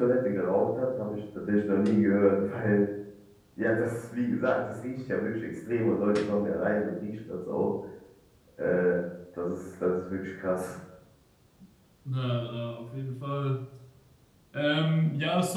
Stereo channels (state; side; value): identical; both; correlation 1.00